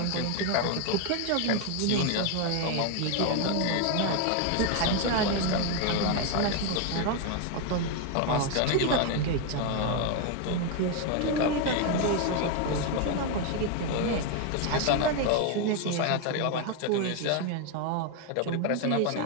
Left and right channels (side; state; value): both; different; correlation 0.01